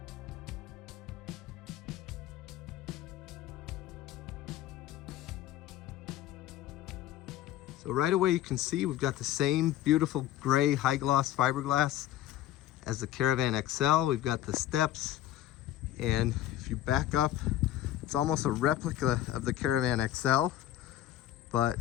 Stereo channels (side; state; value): right; quieter; 13.0 dB